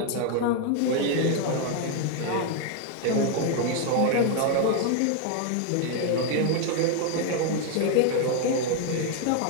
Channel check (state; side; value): different; both; correlation 0.00